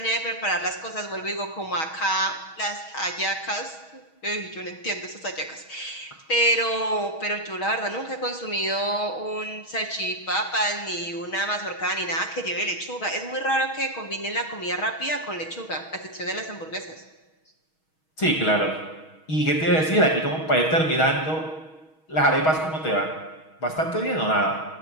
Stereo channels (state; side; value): late; right; 6.3 ms